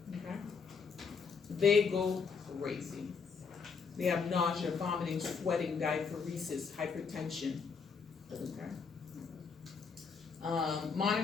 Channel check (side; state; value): right; quieter; 5.4 dB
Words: Okay? They go crazy. They have nausea, vomiting, sweating, diaphoresis, hypertension. Okay.